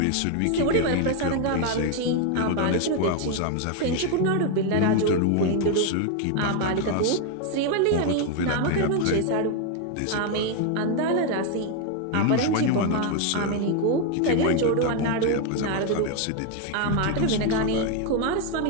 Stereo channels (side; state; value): both; different; correlation 0.01